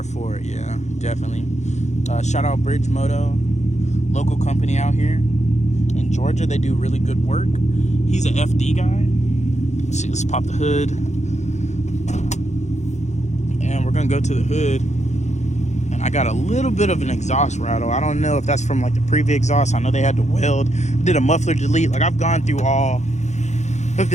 for it, yeah, definitely. Shout out Bridge Moto, local company out here in Georgia. They do really good work. He's an FD guy. Let's see, let's pop the hood. And we're gonna go to the hood. And I got a little bit of an exhaust rattle. I don't know if that's from like the previous exhaust. I know they had to weld. Did a muffler delete. Like, I've gone through all of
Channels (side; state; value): right; late; 0.33 ms